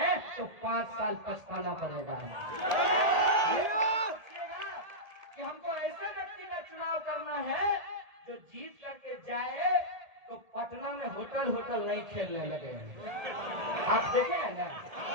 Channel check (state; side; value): late; left; 1.8 ms